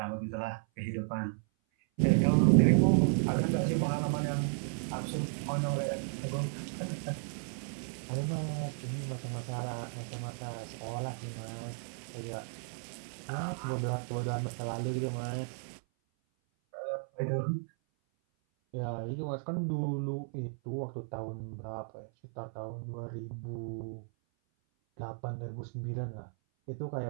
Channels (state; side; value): silent; left; 55 dB below the other